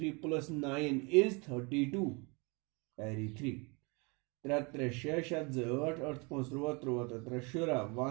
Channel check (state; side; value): quieter; left; 30.0 dB